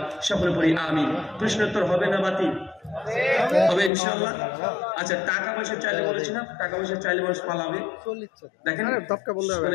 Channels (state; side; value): drops out; right; at 3.9 s